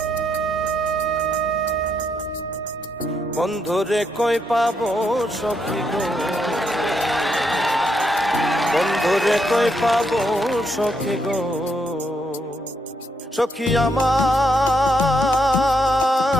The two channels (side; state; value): both; normal; correlation 0.78